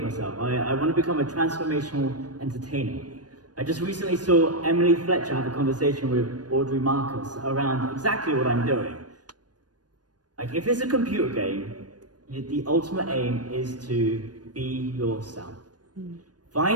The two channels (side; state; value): left; late; 0.69 ms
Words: myself. I want to become a transformational entertainer. I just recently saw Emily Fletcher have a conversation with Audrey Marcus around exactly what I'm doing. Like, if it's a computer game, the ultimate aim is to be yourself.